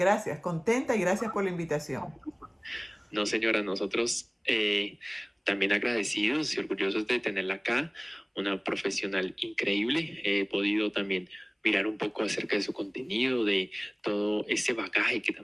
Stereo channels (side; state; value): both; identical; correlation 1.00